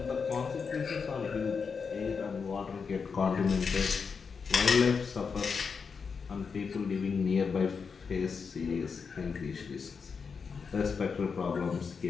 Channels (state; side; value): quieter; right; 5.6 dB